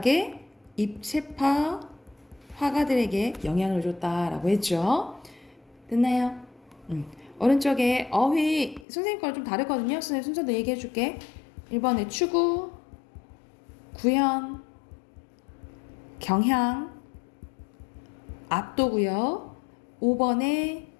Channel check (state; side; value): drops out; right; at 8.8 s